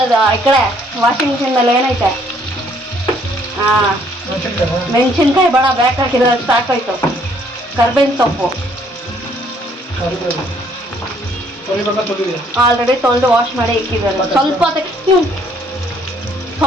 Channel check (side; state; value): both; normal; correlation 0.64